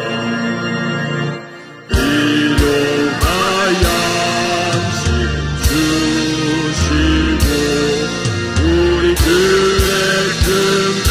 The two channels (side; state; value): both; identical; correlation 1.00